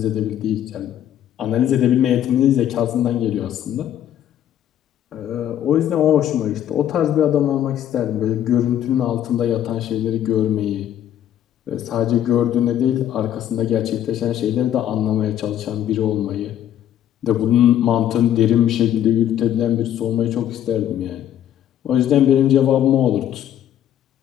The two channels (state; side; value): quieter; right; 10.8 dB